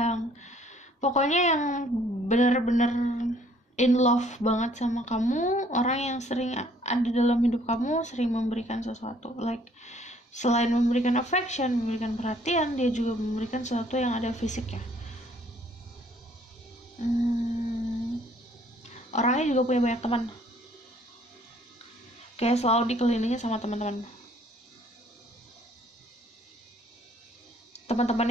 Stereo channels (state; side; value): normal; both; correlation 0.61